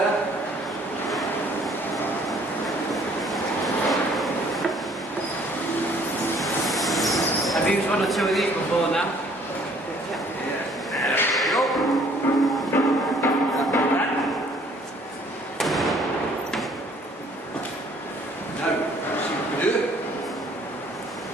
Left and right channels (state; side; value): normal; both; correlation 0.59